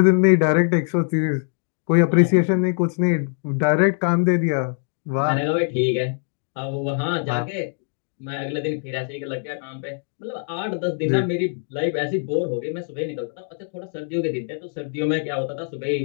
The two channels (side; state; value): right; silent; 64 dB below the other